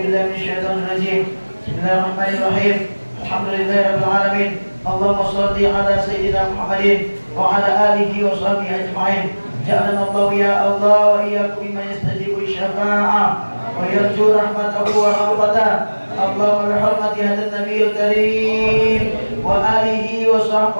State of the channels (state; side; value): inverted; both; correlation -1.00